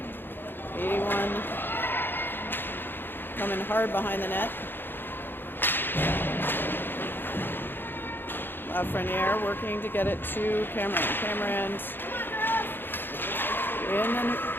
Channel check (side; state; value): right; late; 0.099 ms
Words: 81 coming hard behind the net. Lafreniere working to get it to Cameron. Cameron's in, and